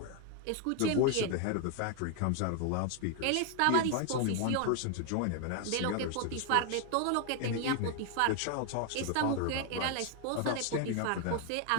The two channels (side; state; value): both; different; correlation 0.00